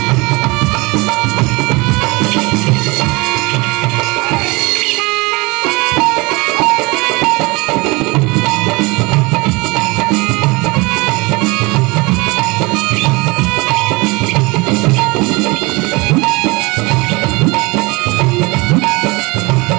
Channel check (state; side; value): quieter; left; 25.3 dB